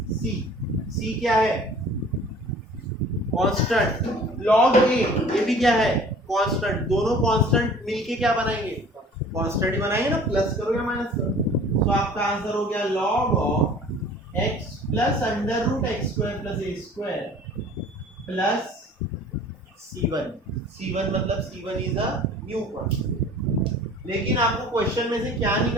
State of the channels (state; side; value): normal; both; correlation 0.48